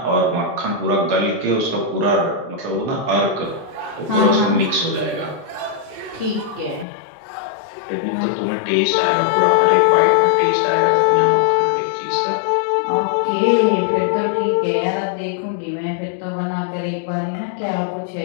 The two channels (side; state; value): right; drops out; at 6.9 s